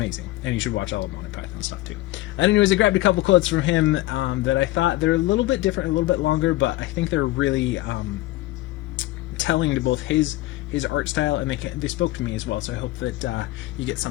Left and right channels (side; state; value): right; quieter; 17.5 dB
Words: And you should watch all of Monty Python stuff too. And anyways, I grabbed a couple quotes from him that I thought they're a little bit different, a little bit longer, but I think they're really telling to both his art style, and they spoke to me as well. So I hope that you get